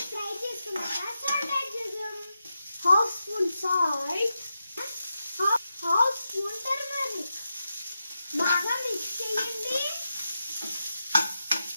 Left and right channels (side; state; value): both; inverted; correlation -0.88